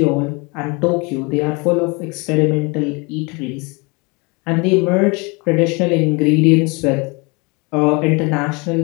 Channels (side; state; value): right; quieter; 29.0 dB